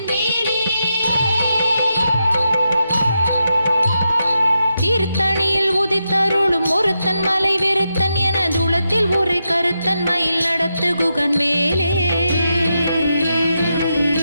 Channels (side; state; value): both; inverted; correlation -0.86